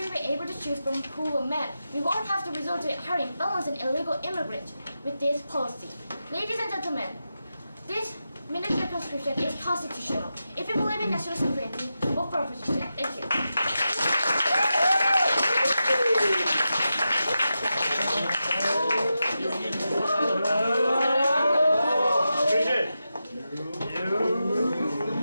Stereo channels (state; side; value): inverted; both; correlation -0.90